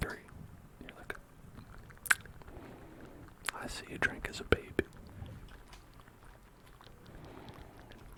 And you're like, I see you drank as a baby.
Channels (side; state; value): both; identical; correlation 1.00